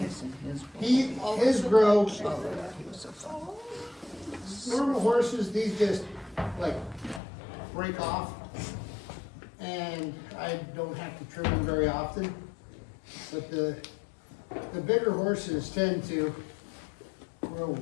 His grow, normal horses, these just like break off. And I don't have to trim them very often. But the bigger horses tend to grow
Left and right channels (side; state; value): right; drops out; at 7.2 s